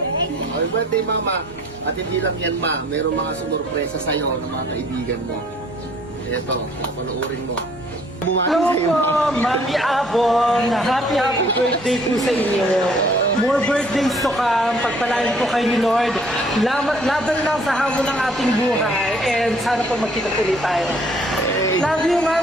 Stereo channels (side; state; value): both; normal; correlation 0.58